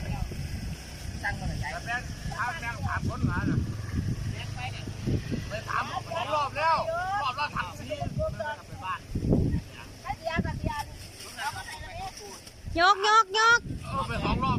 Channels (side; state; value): both; identical; correlation 1.00